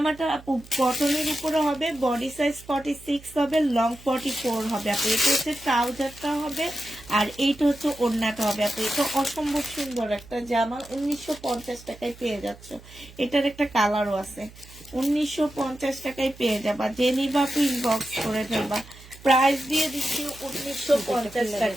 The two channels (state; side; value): noise; right; hum, 20 dB below the sound